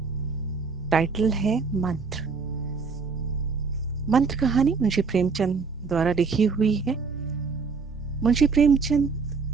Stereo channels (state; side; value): quieter; left; 4.9 dB